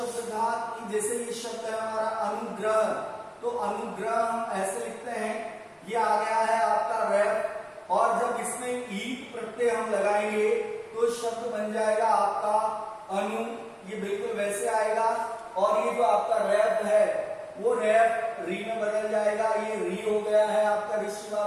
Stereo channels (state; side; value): identical; both; correlation 1.00